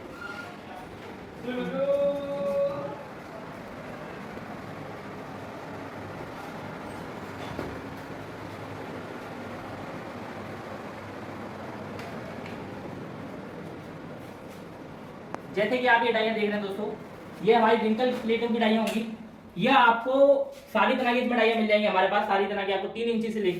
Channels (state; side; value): identical; both; correlation 1.00